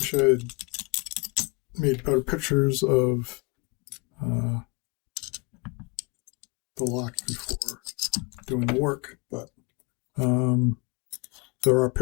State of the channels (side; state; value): right; quieter; 29.2 dB